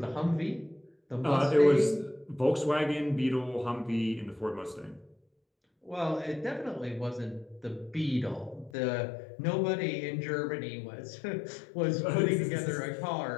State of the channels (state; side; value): drops out; right; at 8.7 s